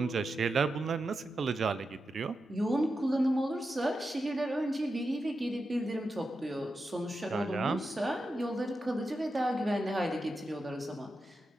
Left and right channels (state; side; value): normal; both; correlation 0.89